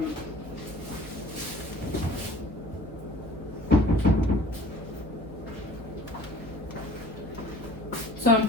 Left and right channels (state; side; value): normal; both; correlation 0.48